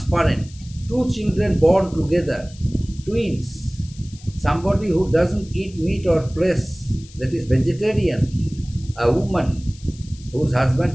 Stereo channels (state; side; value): noise; left; hiss, 22 dB below the sound